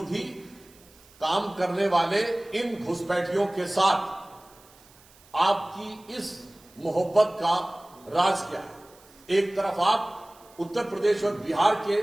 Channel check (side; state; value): right; noise; hiss, 27 dB below the sound